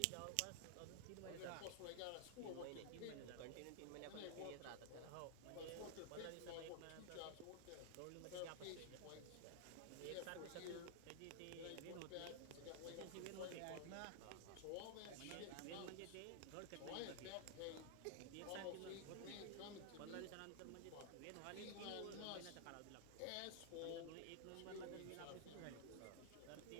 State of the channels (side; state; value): both; different; correlation 0.00